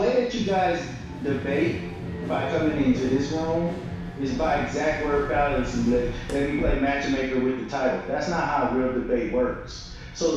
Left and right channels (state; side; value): identical; both; correlation 1.00